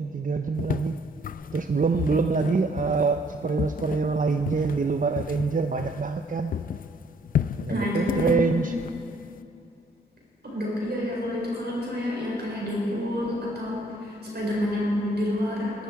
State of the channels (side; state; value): both; normal; correlation 0.64